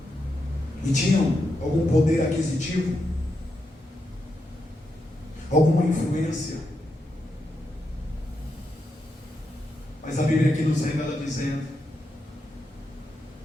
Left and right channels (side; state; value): both; normal; correlation 0.84